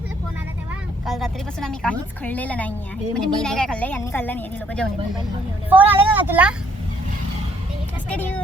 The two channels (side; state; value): both; normal; correlation 0.66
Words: फोन आला तेव्हा काल रात्रीपासून आम्ही काहीच खाल्लेलं नाही आहे. म्हणजे मी नाही काय खाल्लंय, यांनी खाल्लं नाही. लोक जेवण. फोन आलेला ना तुला?